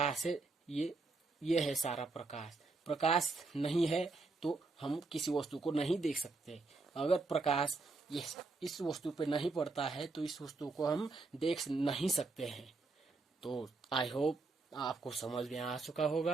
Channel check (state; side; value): quieter; left; 3.7 dB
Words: है, ये है सारा प्रकाश। प्रकाश नहीं है तो हम किसी वस्तु को नहीं देख सकते। अगर प्रकाश इस वस्तु पे नहीं पड़ता है तो इस वस्तु को हम देख नहीं सकते हैं। तो आई होप आपको समझ में आ चुका